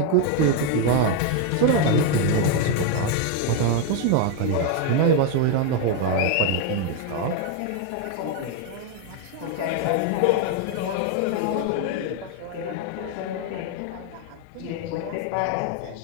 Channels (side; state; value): both; different; correlation 0.01